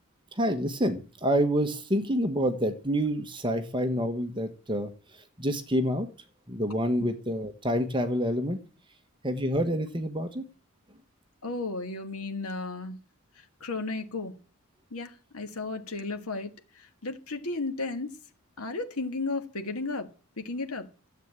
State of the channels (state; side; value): normal; both; correlation 0.51